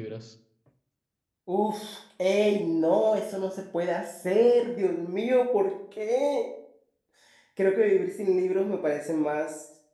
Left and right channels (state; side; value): identical; both; correlation 1.00